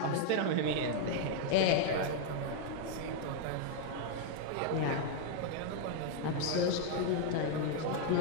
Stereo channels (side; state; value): both; different; correlation 0.00